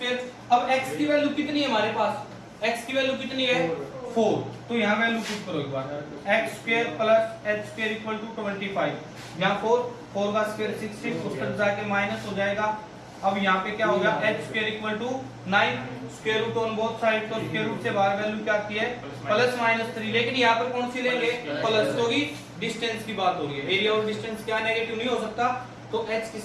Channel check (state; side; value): identical; both; correlation 1.00